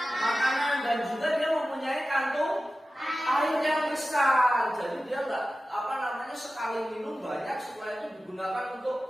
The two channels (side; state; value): both; normal; correlation 0.95